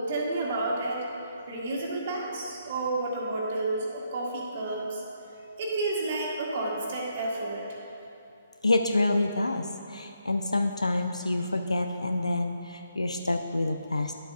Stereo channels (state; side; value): inverted; both; correlation -0.78